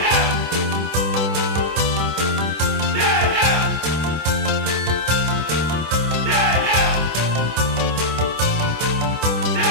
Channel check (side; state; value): left; late; 25 ms